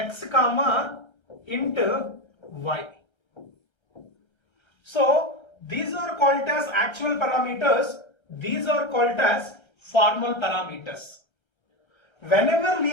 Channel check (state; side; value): late; right; 1.3 ms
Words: comma int y. So these are called as actual parameters, these are called as formal parameters. Whenever we